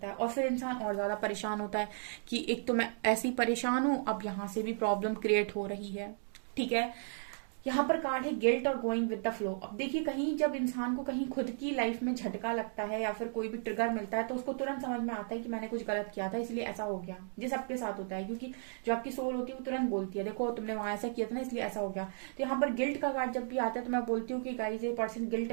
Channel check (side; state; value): left; silent; digital silence